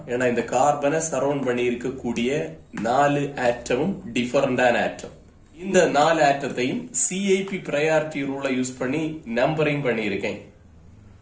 ஏன்னா இந்த கார்பனை சரௌண்ட் பண்ணி இருக்கக்கூடிய 4 ஆட்டமும் டிஃபரண்டான ஆட்டம். இந்த 4 ஆட்டத்தையும் CIP பிரையாரிட்டி ரூலை யூஸ் பண்ணி நம்பரிங் பண்ணியிருக்கேன்.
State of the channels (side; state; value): both; identical; correlation 1.00